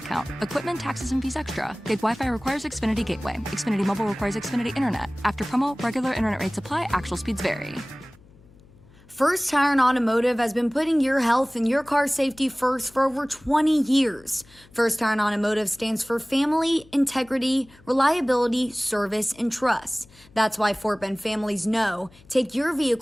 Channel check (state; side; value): noise; left; hum, 26 dB below the sound